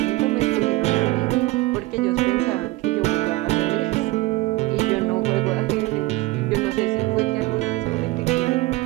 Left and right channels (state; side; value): quieter; left; 19.9 dB